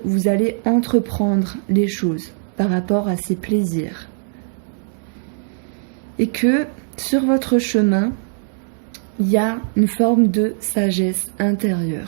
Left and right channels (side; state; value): left; silent; 66 dB below the other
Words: vous allez entreprendre les choses par rapport à ces plaisirs. Et que sur votre chemin, il y a une forme de sagesse